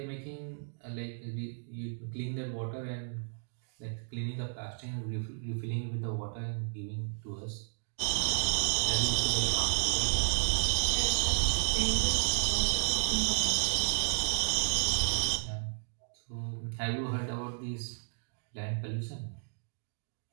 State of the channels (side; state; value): left; silent; digital silence